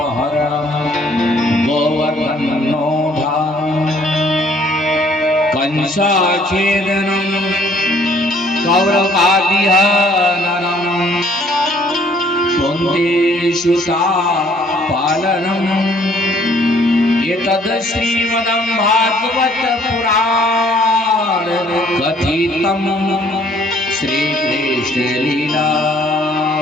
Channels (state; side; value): normal; both; correlation 0.61